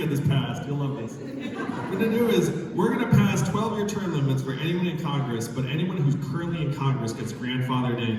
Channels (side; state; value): both; identical; correlation 1.00